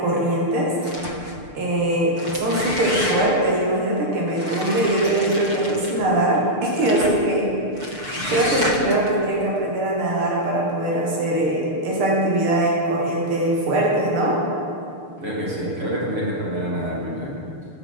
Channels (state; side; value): late; left; 6.7 ms